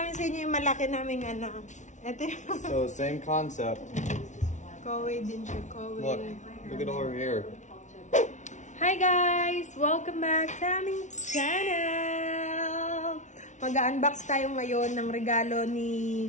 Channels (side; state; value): right; late; 0.36 ms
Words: sa inyo yung malaki naming ano. Ito yung... So same concept. Kaway din siya, kaway. Look at all her hair. Hi guys! Welcome back sa aming channel! Mag-unbox tayo ngayon ng regalo ni